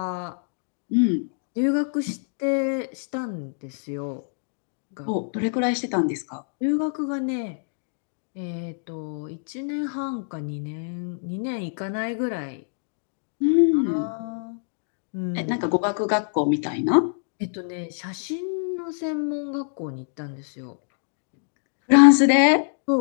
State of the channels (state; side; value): silent; right; digital silence